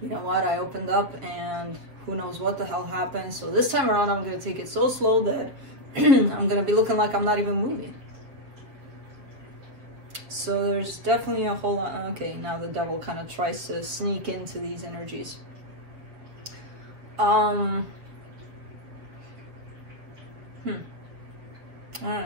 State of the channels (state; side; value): late; left; 7.2 ms